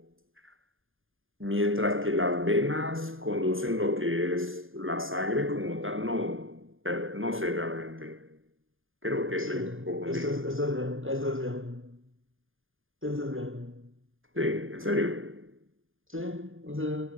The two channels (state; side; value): late; left; 0.59 ms